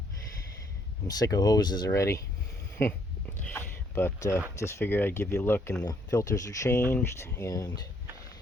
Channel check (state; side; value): normal; both; correlation 0.68